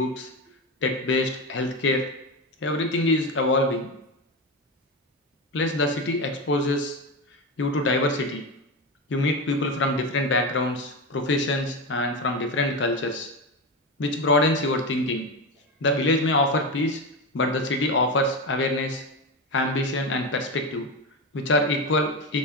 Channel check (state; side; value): normal; both; correlation 0.18